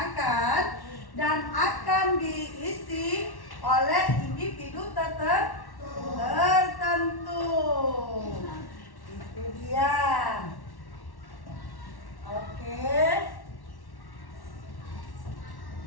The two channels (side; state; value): right; late; 1.1 ms